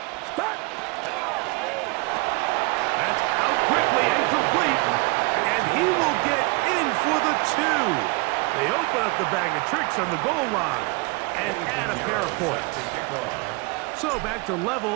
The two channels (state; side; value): quieter; left; 27.3 dB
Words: That's out quickly and complete. And he will get in for the 2. They open up the bag of tricks on the goal line and add a pair of points. So back to